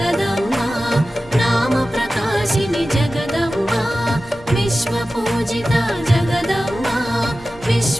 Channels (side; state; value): right; noise; hum, 26 dB below the sound